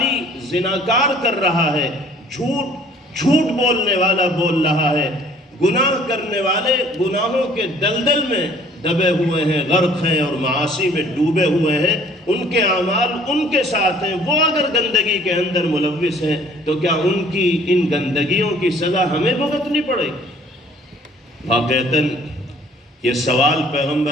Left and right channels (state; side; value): normal; both; correlation 0.55